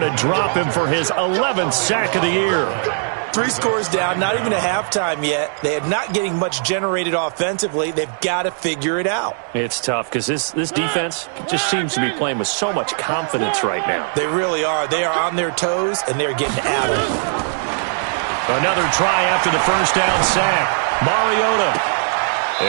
to drop him for his 11th sack of the year. 3 scores down, not even a halftime yet. They are not getting much generated offensively. They've got to figure it out. It's tough because this defense just seems to be playing with so much confidence right now. They really are. They are on their toes, and they're getting at it. Another try after the first down sack. Mariota.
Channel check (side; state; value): left; silent; digital silence